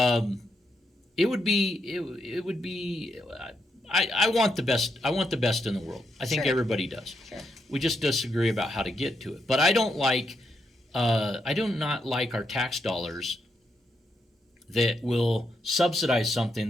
It would be. I want the best. I want the best in the world. I think everybody does. Sure. We just disagree about how to get to it. But I don't like. I do not like our tax dollars that will subsidize something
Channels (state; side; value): normal; both; correlation 0.80